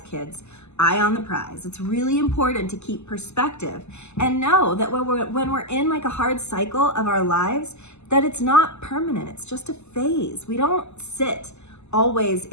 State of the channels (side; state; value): right; late; 0.82 ms